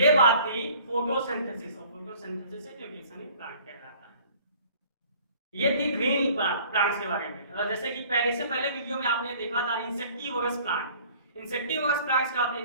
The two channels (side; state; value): both; inverted; correlation -0.52